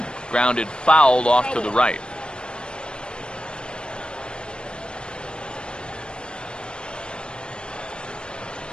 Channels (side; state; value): right; late; 0.053 ms